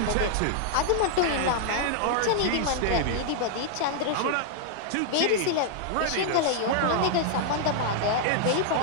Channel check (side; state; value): both; different; correlation -0.01